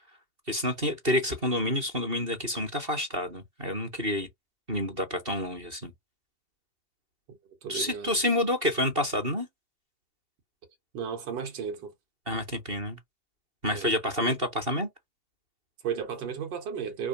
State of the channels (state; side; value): late; left; 2.7 ms